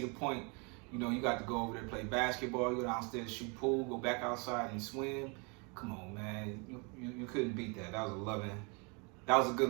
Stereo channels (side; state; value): left; quieter; 32.4 dB